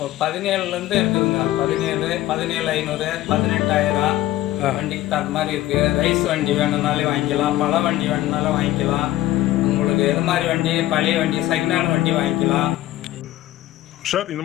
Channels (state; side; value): quieter; right; 15.0 dB